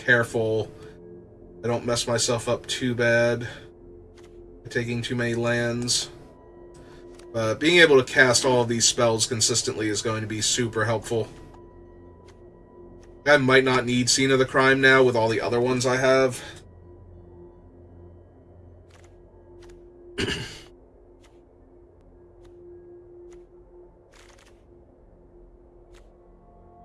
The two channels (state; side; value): identical; both; correlation 1.00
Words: careful I don't mess myself up too bad by taking too many lands. But being able to cast all of these spells consistently is going to be super helpful. I might not need Scene of the Crime now with all the other ones I have.